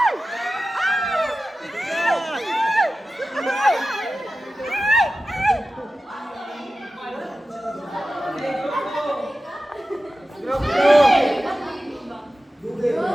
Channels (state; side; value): normal; both; correlation 0.94